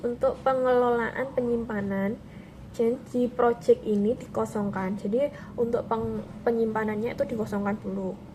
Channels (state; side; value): identical; both; correlation 1.00